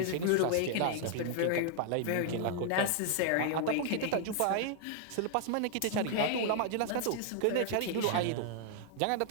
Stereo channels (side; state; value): both; different; correlation -0.01